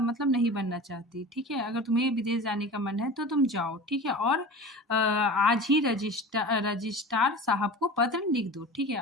नहीं बनना चाहती। ठीक है, अगर तुम्हें विदेश जाने का मन है तो तुम जाओ। ठीक है, और आज ही रजिस्ट्रार साहब को पत्र लिख दो। ठीक है,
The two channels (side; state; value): both; normal; correlation 0.35